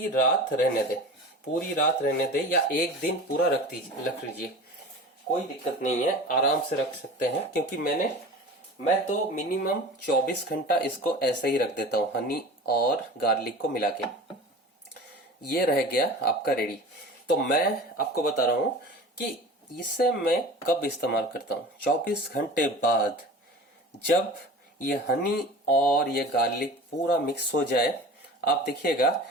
रात रहने दें, पूरी रात रहने दें, या एक दिन पूरा रख लीजिए, कोई दिक्कत नहीं है, आराम से रख सकते हैं। क्योंकि मैं तो मिनिमम 24 घंटा इसको ऐसे ही रख देता हूँ हनी और गार्लिक को मिला के। ये रह गया आपका रेडी। तो मैं आपको बता रहा हूं कि इसे मैं कब इस्तेमाल करता हूं। 24 घंटे बाद जब ये हनी और ये गार्लिक पूरा मिक्स हो जाए, आप देखिएगा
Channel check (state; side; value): normal; both; correlation 0.37